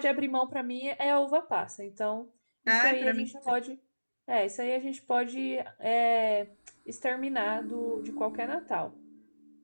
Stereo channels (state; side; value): inverted; both; correlation -1.00